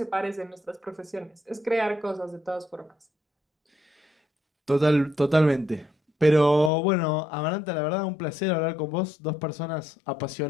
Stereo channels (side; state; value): right; drops out; at 6.7 s